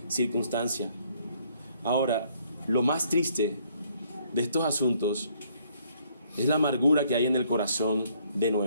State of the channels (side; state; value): both; inverted; correlation -0.66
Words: circunstancia. Ahora, lo más triste de estos asuntos es la amargura que hay en el corazón de